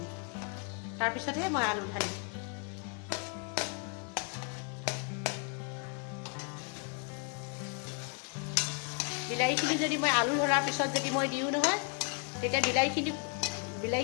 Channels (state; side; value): quieter; right; 37.6 dB